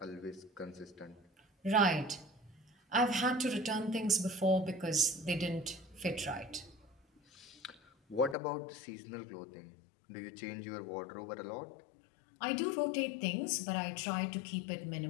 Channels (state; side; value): drops out; right; at 8.3 s